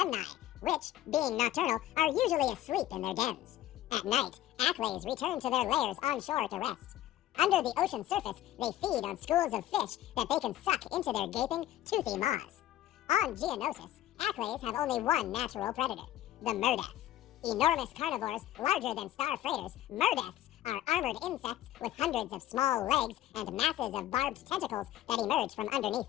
which, being nocturnal, are usually asleep in their dens. At night, acklays return to their lairs on shore to rest. Under the ocean surface, they feed on schools of fish that they can suck into their gaping, toothy maws. On Geonosis, acklays have only one natural predator, the murdeff. Enormous carnivores larger than star freighters, murdeffs are armored insects with hundreds of small legs and masses of barbed tentacles that emerge from underneath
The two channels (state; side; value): quieter; right; 13.5 dB